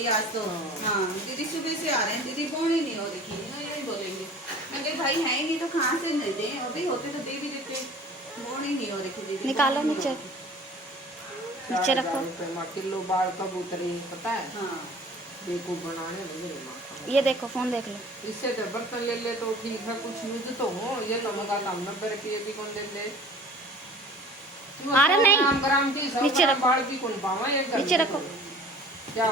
आज तो। हाँ दीदी सुबह से आ रहे हैं दीदी बोनी नहीं हो रही ना, यही बोलेंगे। मैं कही भाई है ही नहीं तो कहाँ से नहीं दें, अभी होते तो दे भी देते, बोनी नहीं हो रही दीदी। निकालो नीचे, नीचे रखो। किलो बाल कबूतरी पता है। हाँ देखो बनाने लगे माँ। ये देखो फोन देख लो। इससे तो बर्तन ले ले तो ठीक है, कुछ यूज तो हो, ये तो मगा काम 90 रुपये भी कौन दे ले। अरे नहीं, ग्राम की नीचे रखो, बाल की कौन पावा, एक नीचे रखो। क्या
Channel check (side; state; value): both; normal; correlation 0.45